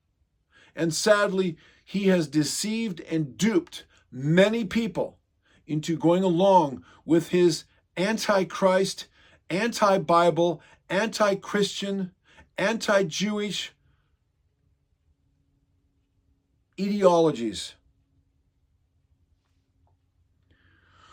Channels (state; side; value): identical; both; correlation 1.00